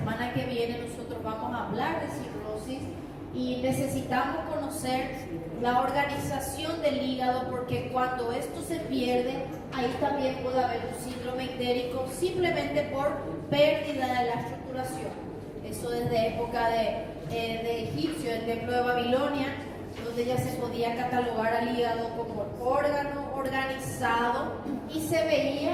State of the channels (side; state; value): both; identical; correlation 1.00